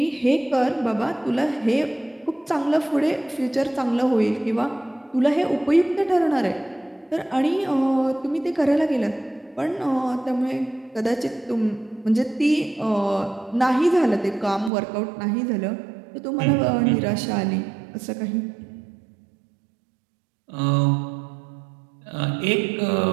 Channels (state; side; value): drops out; left; at 14.7 s